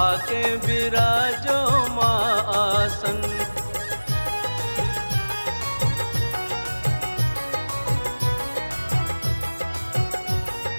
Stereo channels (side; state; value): both; inverted; correlation -1.00